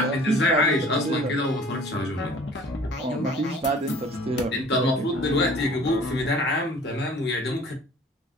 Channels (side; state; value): both; normal; correlation 0.49